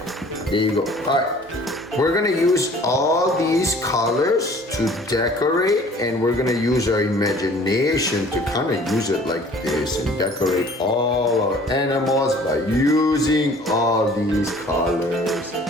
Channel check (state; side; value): normal; both; correlation 0.51